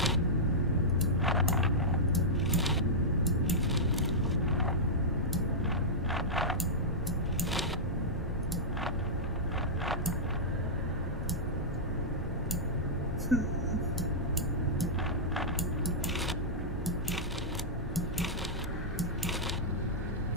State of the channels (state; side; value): normal; both; correlation -0.11